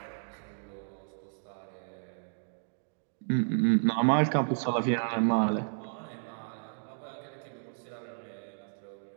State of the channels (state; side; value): silent; left; digital silence